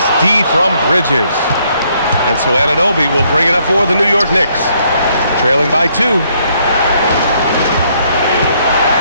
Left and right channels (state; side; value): inverted; both; correlation -0.69